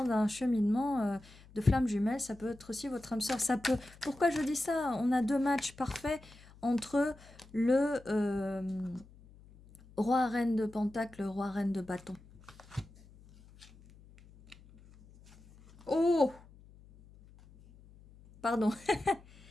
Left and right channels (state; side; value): noise; left; hum, 23 dB below the sound